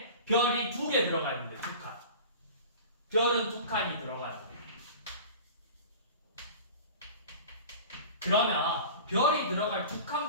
별이 2개 들어가 있는데 2칸. 별은 2칸이 들어가야 돼. 그러면 별이 들어갈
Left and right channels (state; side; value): inverted; both; correlation -0.38